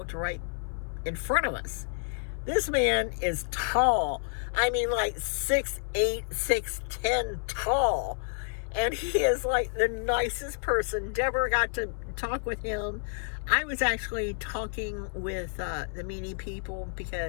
right in front of us. This man is tall. I mean, like 6'8", 6'10" tall, and he is like the nicest person. Deborah got to talk with him. I was actually talking with the meanie people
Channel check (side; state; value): right; silent; 58 dB below the other